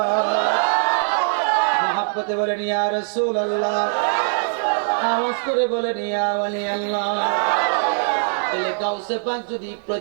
মুহাব্বতে বলেন ইয়া রাসূলুল্লাহ, আওয়াজ করে বলেন ইয়া ওলি আল্লাহ। তাহলে গাউসে পাক যদি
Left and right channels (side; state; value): left; silent; digital silence